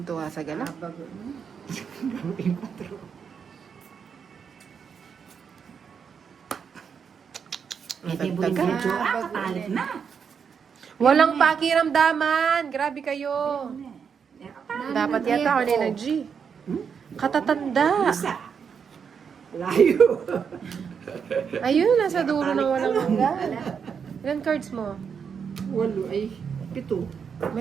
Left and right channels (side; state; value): left; quieter; 6.7 dB